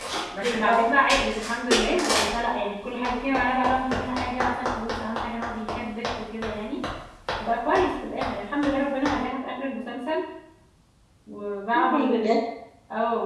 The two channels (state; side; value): identical; both; correlation 1.00